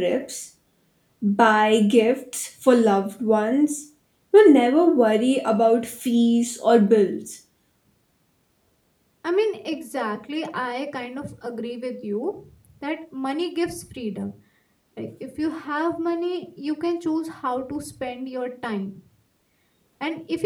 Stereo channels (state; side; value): identical; both; correlation 1.00